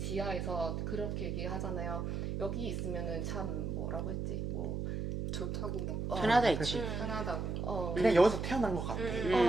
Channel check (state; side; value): noise; right; hum, 2 dB below the sound